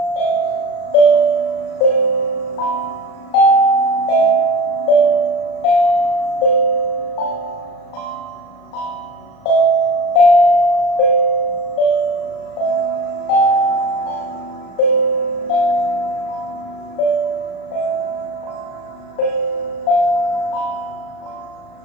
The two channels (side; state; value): right; late; 37 ms